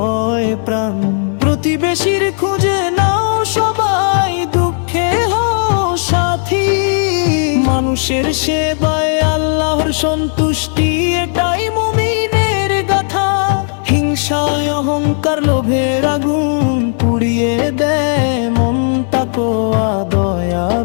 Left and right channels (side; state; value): right; silent; digital silence